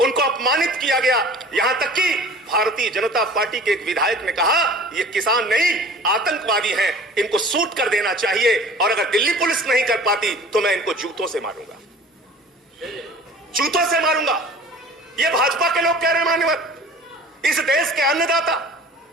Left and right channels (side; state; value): both; normal; correlation 0.44